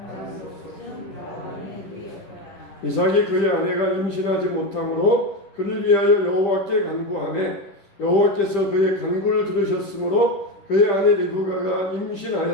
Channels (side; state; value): right; late; 10 ms